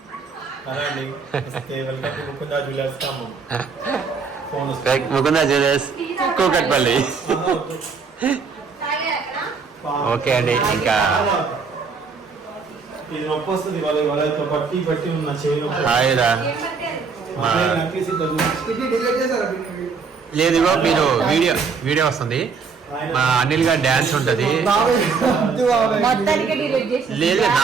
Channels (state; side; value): quieter; left; 5.2 dB